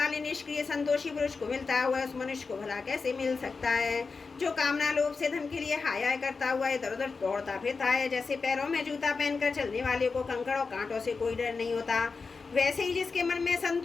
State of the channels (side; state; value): right; quieter; 4.6 dB